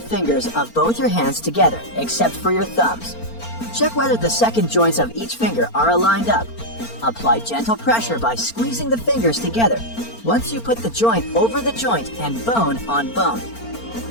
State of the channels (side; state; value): right; late; 4.4 ms